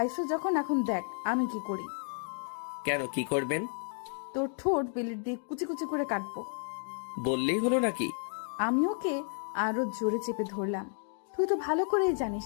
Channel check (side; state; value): right; silent; 56 dB below the other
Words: যখন, এখন দেখ আমি কি করি। কেন, কি করবেন? তোর ঠোঁট বেলেট দিয়ে কুচি কুচি করে কাটবো। বললেই হলো নাকি? আমি ওকে আরো জোরে চেপে ধরলাম। তুই তো ভালো করেই জানিস